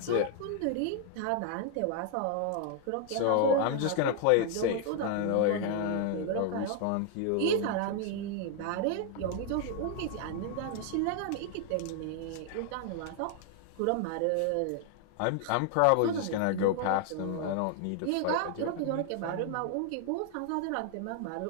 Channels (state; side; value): different; both; correlation 0.00